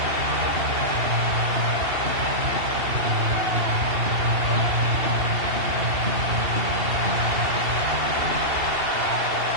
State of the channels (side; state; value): left; late; 2.8 ms